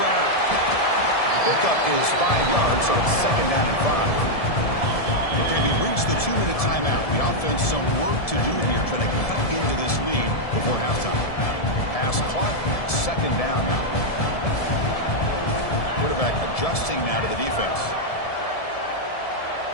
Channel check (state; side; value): late; right; 1.7 ms